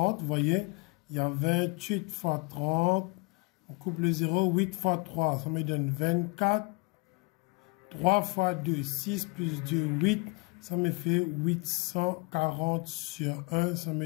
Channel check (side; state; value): right; quieter; 28.3 dB